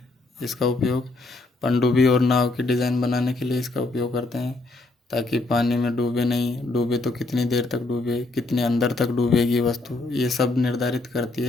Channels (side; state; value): right; quieter; 3.1 dB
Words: इसका उपयोग पनडुब्बी और नाव की डिज़ाइन बनाने के लिए इसका उपयोग करते हैं, ताकि पानी में डूबे नहीं, डूबे तो कितनी देर तक डूबे, कितने अंदर तक डूबेगी वस्तु, ये सब निर्धारित करती